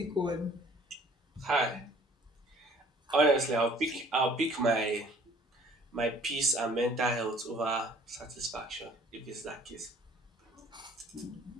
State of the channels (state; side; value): normal; both; correlation 0.54